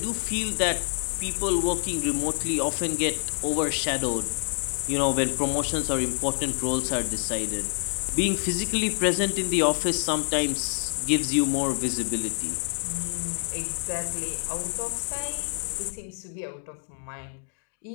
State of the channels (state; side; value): silent; right; 60 dB below the other